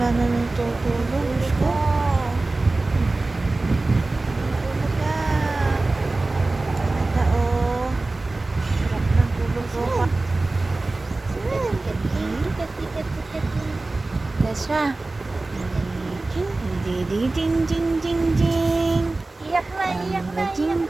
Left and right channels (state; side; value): quieter; left; 3.2 dB